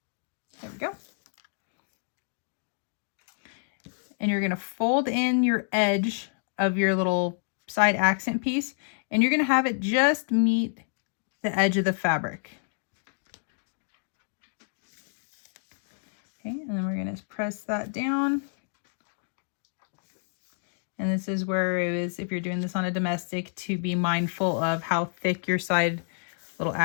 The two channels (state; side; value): silent; right; digital silence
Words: There we go. And you're going to fold in your edge of your little side accent piece, and you're going to have it just meet the edge of the fabric. Okay, and then we're going to press that down. And this is where it is, if you're doing this on a domestic, to be mindful of how thick your side little